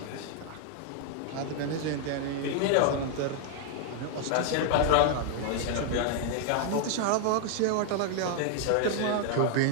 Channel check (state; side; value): different; both; correlation -0.01